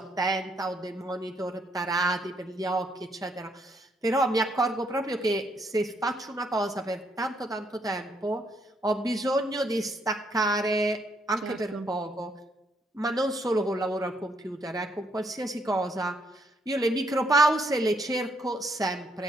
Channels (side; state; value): both; normal; correlation 0.72